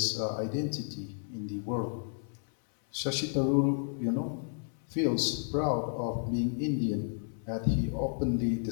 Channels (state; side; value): silent; right; 56 dB below the other